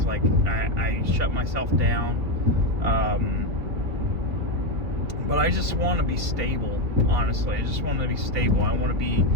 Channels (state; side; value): late; left; 3.0 ms